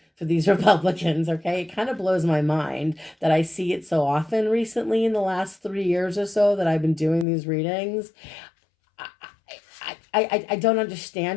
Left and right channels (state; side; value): drops out; right; at 7.2 s